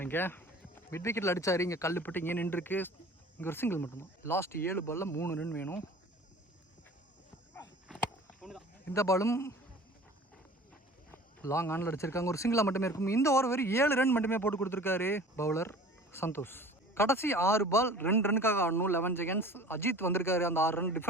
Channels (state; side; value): normal; both; correlation 0.44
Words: இங்கே மிட் விக்கெட்டில் அடித்தார். இங்கே கல்லுப்பட்டு இங்கே நின்றுருக்கு. இங்கே ஒரு சிங்கிள் மட்டும்தான். லாஸ்ட் 7 பாலில் 3 ரன் வேணும். இந்த பாலும் லாங் ஆனில் அடிச்சிருக்காங்க. ஒரு சிங்கிளாக மட்டுமே இருக்கும். இந்த ஓவர் வெறும் 7 ரன் மட்டுமே போட்டு கொடுத்துருக்காரு பவுலர் சந்தோஷ். கடைசி 6 பால் 2 ரன்னுக்காக ஆடணும். 11 செகண்ட்ஸ். அஜித் வந்திருக்காரு அந்த 6 ரன்